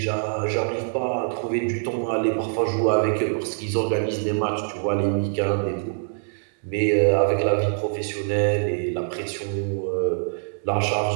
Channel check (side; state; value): left; silent; digital silence